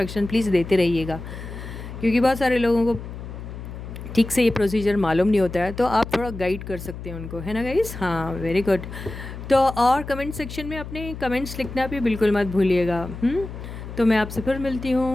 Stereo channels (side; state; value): left; noise; hum, 10 dB below the sound